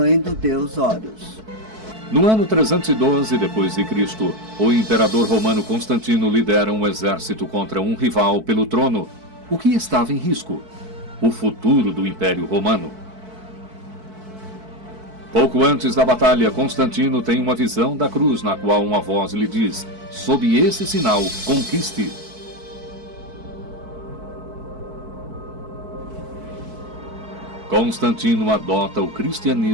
do deus Horus. No ano 312 d.C., o imperador romano Constantino lidera um exército contra um rival pelo trono. O que estava em risco? O futuro do Império Romano. Pouco antes da batalha, Constantino tem uma visão da cruz na qual uma voz lhe diz: sob esse sinal, conquiste. Constantino adota o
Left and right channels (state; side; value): late; left; 4.6 ms